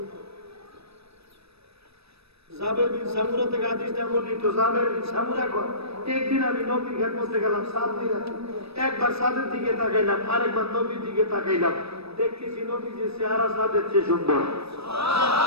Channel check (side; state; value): left; late; 0.78 ms